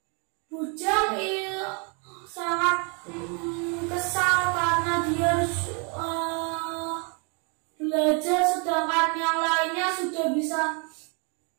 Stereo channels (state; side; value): quieter; left; 35.5 dB